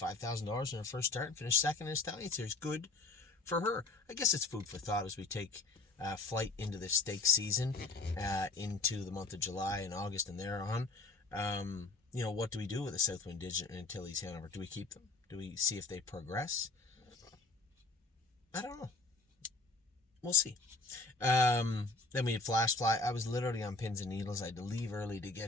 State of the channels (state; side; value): quieter; right; 3.6 dB